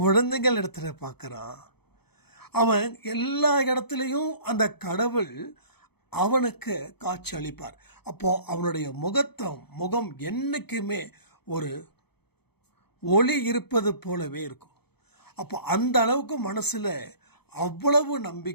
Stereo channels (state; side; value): late; right; 0.97 ms